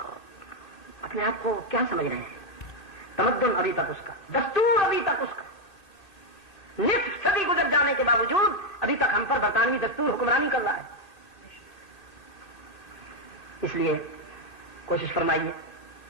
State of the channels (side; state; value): right; late; 1.8 ms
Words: اپنے آپ کو کیا سمجھ رہے ہیں۔ تمدن ابھی تک اس کا، دستور ابھی تک اس کا، نصف صدی گزر جانے کے باوجود ابھی تک ہم پر برطانوی دستور حکمرانی کر رہا ہے۔ اس لیے کوشش فرمائیے